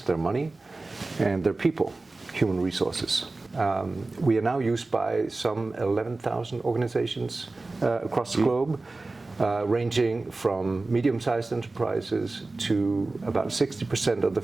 money, and their people, human resources. We are now used by some 11,000 organizations across the globe, ranging from medium-sized enterprises to about 60% of the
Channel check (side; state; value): left; quieter; 3.3 dB